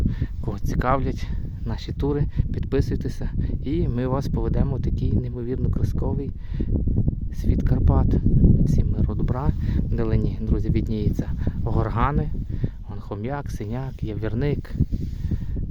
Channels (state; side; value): identical; both; correlation 1.00